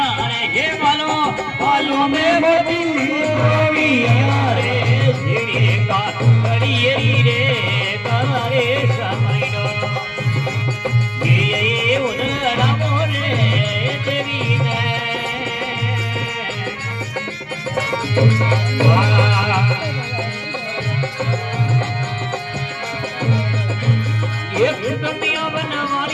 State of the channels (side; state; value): both; identical; correlation 1.00